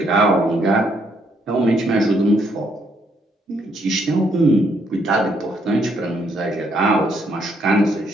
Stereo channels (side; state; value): both; normal; correlation 0.72